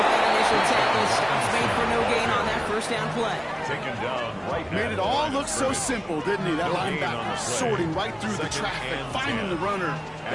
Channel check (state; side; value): identical; both; correlation 1.00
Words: that initial tackle. Stops made for no gain on that 1st down play. Taken down right. Made it all look so simple, didn't he? That linebacker sorting right through the traffic, finding the runner.